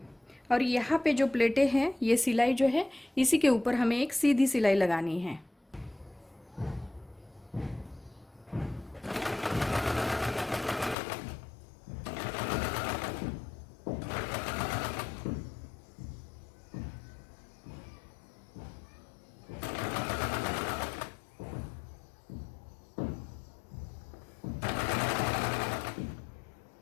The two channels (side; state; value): right; drops out; at 11.0 s